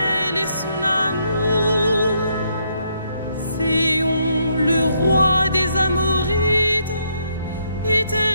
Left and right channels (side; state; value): both; inverted; correlation -0.74